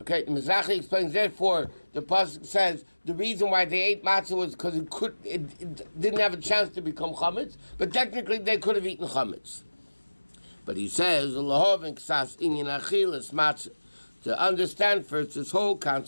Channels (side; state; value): both; inverted; correlation -1.00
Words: Okay, the Mizrahi explains, therefore, the pasuk says, the reason why they ate matzah was because it didn't have a chance to become chametz, but technically they could have eaten chametz. But he says, to understand first this whole